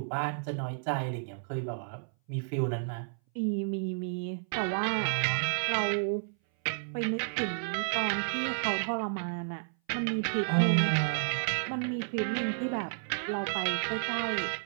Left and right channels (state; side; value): silent; left; 57 dB below the other